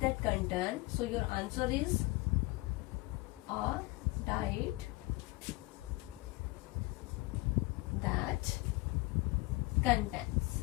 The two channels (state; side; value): quieter; right; 22.8 dB